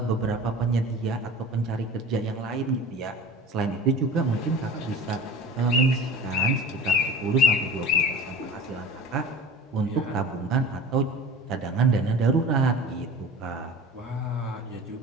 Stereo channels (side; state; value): both; normal; correlation 0.39